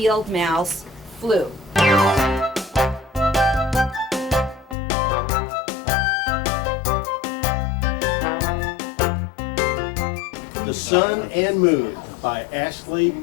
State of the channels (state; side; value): drops out; right; at 4.8 s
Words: mouse flew. The Sun and Moon by Ashley